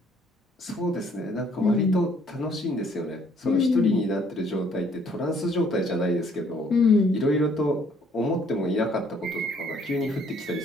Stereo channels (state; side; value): normal; both; correlation 0.63